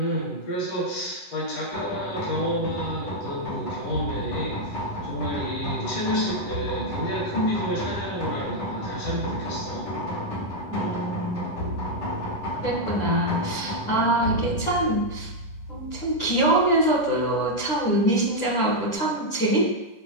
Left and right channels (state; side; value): late; right; 9.9 ms